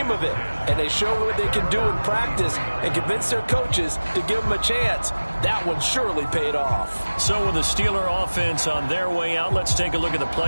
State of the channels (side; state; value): both; inverted; correlation -1.00